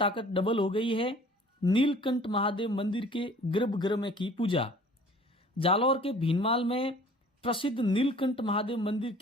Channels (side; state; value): both; normal; correlation 0.50